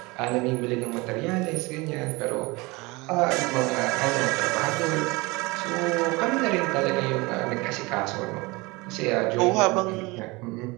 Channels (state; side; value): quieter; left; 24.1 dB